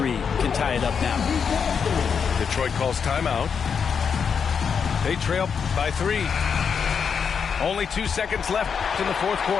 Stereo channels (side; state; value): right; quieter; 6.5 dB